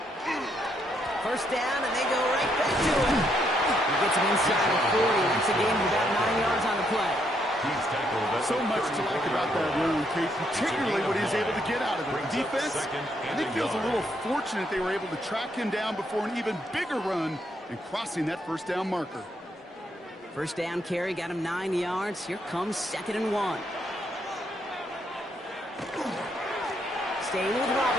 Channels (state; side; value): normal; both; correlation 0.74